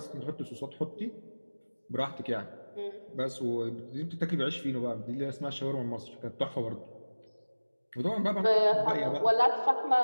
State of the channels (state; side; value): inverted; both; correlation -1.00